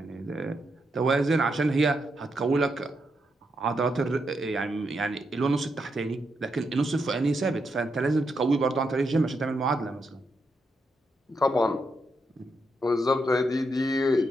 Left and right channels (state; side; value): normal; both; correlation 0.82